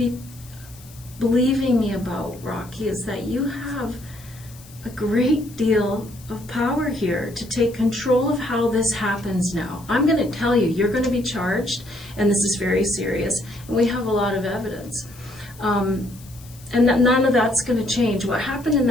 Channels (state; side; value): noise; left; hiss, 22 dB below the sound